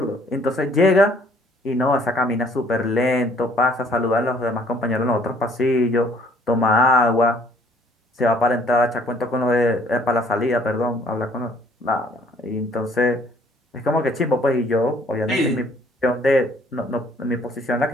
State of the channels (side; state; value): both; normal; correlation 0.60